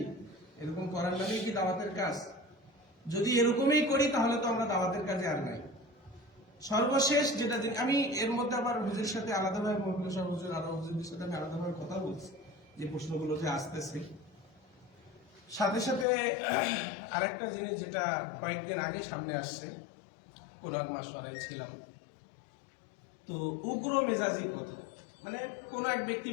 এরকম করার নামেই কি দাওয়াতের কাজ? যদি এরকমই করি, তাহলে তো আমরা দাওয়াতের কাজে আর নাই। সর্বশেষ যেটা আমি এর মধ্যে আবার হুজুরের সাথে আলাদাভাবে, মহকুমা সাহেব হুজুর, আরো হুজুরদের সাথে আমি আলাদাভাবে কথা বলছি, যে প্রশ্নগুলো যে আসতেছে। সাথে সাথে আরেকটা জিনিস যেটা কয়েকদিন আগে সামনে আসছে, কোরআন মাসওয়ারায় ছিলাম, তো উগ্র মেজাজি কথা, মানে কোন এক ব্যক্তি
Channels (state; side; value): drops out; right; at 16.1 s